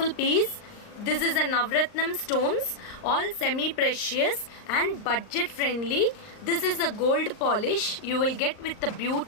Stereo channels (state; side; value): late; right; 38 ms